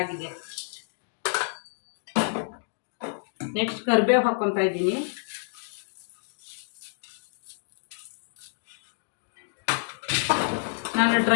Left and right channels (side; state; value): right; silent; digital silence